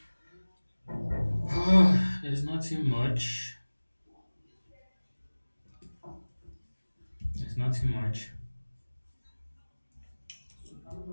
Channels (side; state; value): both; inverted; correlation -1.00